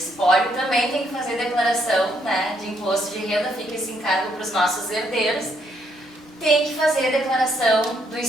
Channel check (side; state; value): both; normal; correlation 0.72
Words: também tem que fazer declaração, né, de imposto de renda, fica esse encargo para os nossos herdeiros. Tem que fazer a declaração do